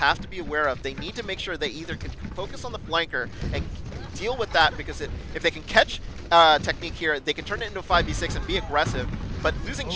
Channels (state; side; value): identical; both; correlation 1.00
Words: to be aware of. They need to make sure they either can focus on the flanker and deal with that, because if they can catch Technique here, they can turn it into a 5v6 and be aggressive. But losing